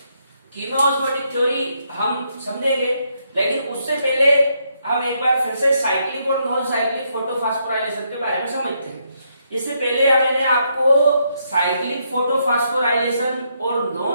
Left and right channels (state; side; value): inverted; both; correlation -0.76